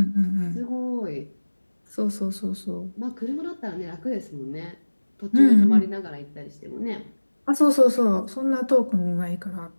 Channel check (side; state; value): both; inverted; correlation -1.00